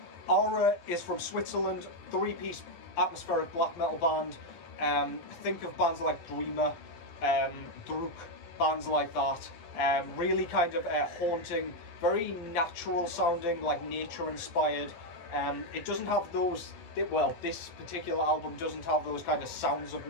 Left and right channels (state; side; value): late; right; 12 ms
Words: Aara is from Switzerland, 3-piece atmospheric black metal band. Think of bands like Dreamer, Druk, bands like that. Really kind of haunting, very natural sounding, like nature inspired. It doesn't have those, well, this particular album doesn't have those kind of sounds of